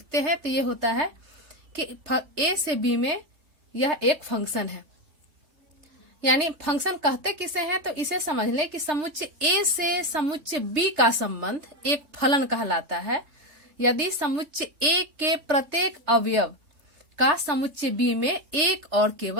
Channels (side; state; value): left; late; 3.3 ms